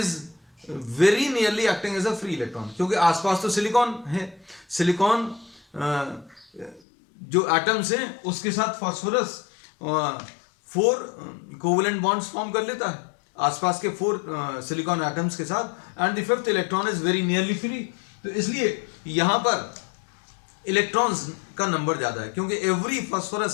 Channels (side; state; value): right; drops out; at 6.8 s